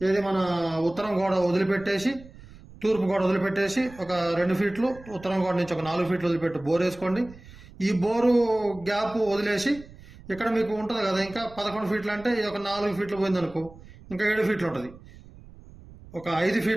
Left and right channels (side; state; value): right; noise; rumble, 20 dB below the sound